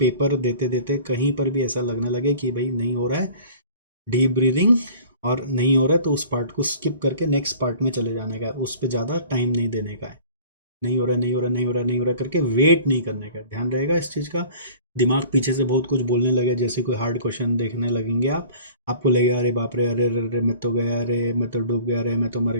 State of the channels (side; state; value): both; inverted; correlation -0.46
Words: देते देते कहीं पर भी ऐसा लगने लगे कि भाई नहीं हो रहा है डीप ब्रीदिंग, और नहीं हो रहा है, तो उस पार्ट को स्किप करके नेक्स्ट पार्ट में चले जाने का, उस पर ज़्यादा टाइम नहीं देने का है। नहीं हो रहा, नहीं हो रहा, नहीं हो रहा, नहीं हो रहा करके वेट नहीं करने का, ध्यान रहेगा इस चीज़ का। दिमाग पीछे से बहुत कुछ बोलने लगे, जैसे कोई हार्ड क्वेश्चन देखने लगेंगे आप, आपको लगेगा अरे बाप रे, अरे अरे अरे मैं तो गया, अरे मैं तो डूब गया, अरे मैं तो मर